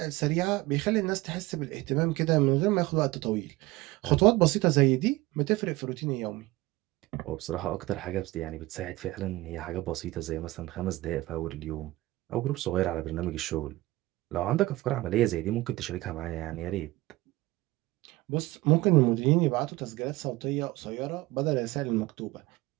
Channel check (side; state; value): left; quieter; 19.3 dB